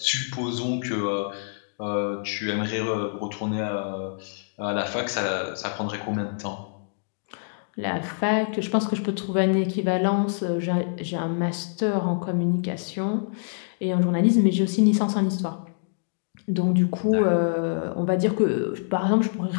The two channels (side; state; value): right; silent; digital silence